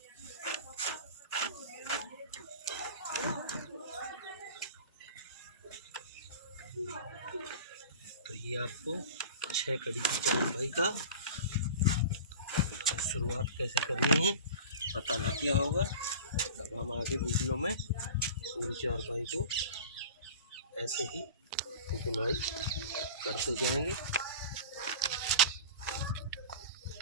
तो ये आपको 6 कड़ी की चारपाई का शुरुआत कैसे करनी है पता लग गया होगा। अब हम आगे वीडियो में पूरी चारपाई को ऐसे ही बुनाई करते जाएंगे।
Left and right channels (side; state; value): both; inverted; correlation -0.36